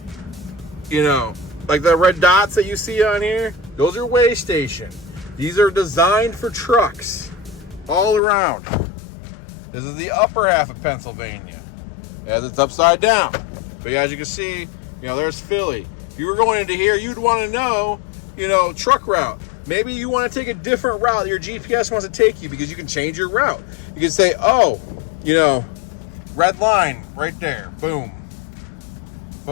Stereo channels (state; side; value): drops out; right; at 8.2 s